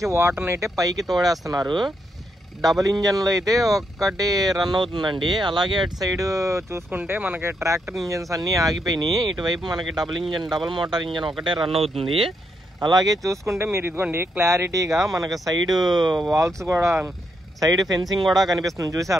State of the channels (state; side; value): normal; both; correlation 0.79